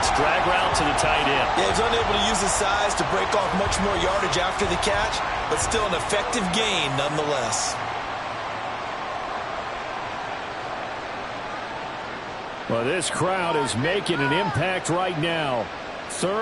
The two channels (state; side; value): identical; both; correlation 1.00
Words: Drag route to the tight end. Yeah, he's unable to use his size to break off much more yardage after the catch, but still an effective gain nonetheless. Well, this crowd is making an impact right now.